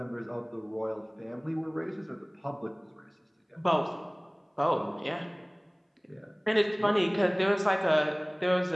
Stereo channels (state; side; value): identical; both; correlation 1.00